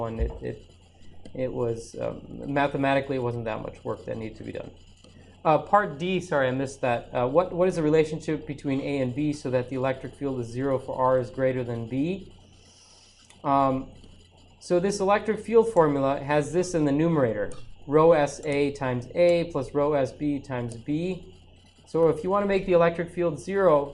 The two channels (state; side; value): identical; both; correlation 1.00